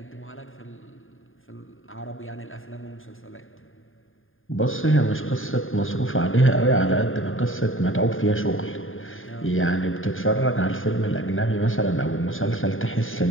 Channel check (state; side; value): late; right; 0.59 ms